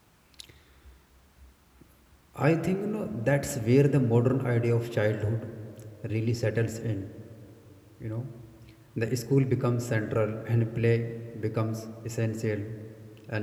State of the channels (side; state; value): both; identical; correlation 1.00